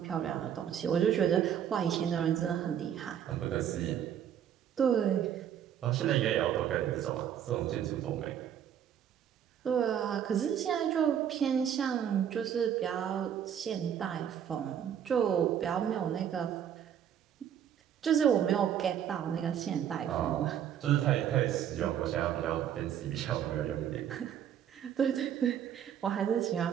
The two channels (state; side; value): quieter; left; 9.4 dB